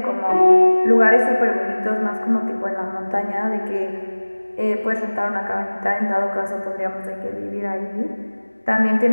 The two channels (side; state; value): both; inverted; correlation -1.00